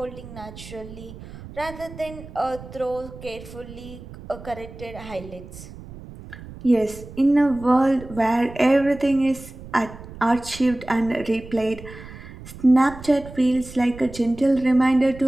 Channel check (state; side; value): noise; right; rumble, 15 dB below the sound